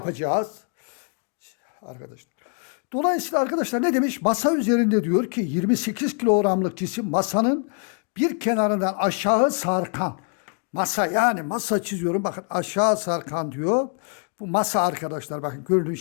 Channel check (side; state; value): right; quieter; 39.4 dB